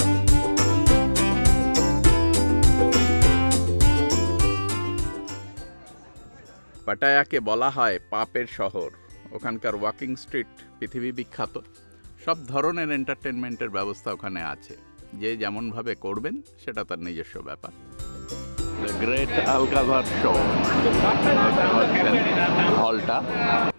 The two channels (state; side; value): inverted; both; correlation -1.00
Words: পাটায়াকে বলা হয় পাপের শহর। ওখানকার ওয়াকিং স্ট্রিট পৃথিবী বিখ্যাত। সব ধরনের এন্টারটেনমেন্টের ব্যবস্থা ওখানে আছে। যে যেমনভাবে করবেন সেটা তার নিজস্ব ব্যাপার। দ্য গ্রেট আলকাজার শো, হলটা